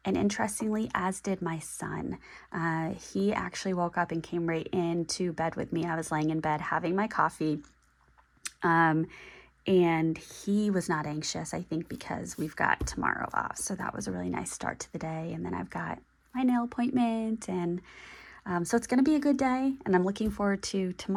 and interestingly, as did my son. He actually woke up and came right into bed with me. I was laying in bed having my coffee. And he was not anxious, I think, because we've got tomorrow off. So that was a really nice start to the day. And then I've got my nail appointment. And so it's going to be a good day. And I'm looking forward to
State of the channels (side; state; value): both; identical; correlation 1.00